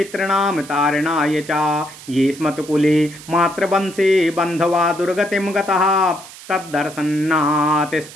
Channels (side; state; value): right; noise; hiss, 17 dB below the sound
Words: तारणाय च ये स्मत्कुले मातृवंशे बन्धवा दुर्गतिं गतः तद्दर्शनात्